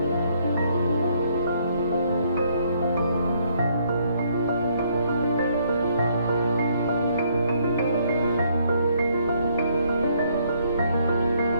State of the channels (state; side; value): inverted; both; correlation -0.69